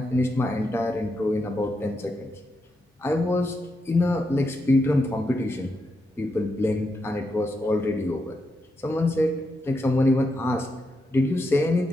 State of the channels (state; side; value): normal; both; correlation 0.84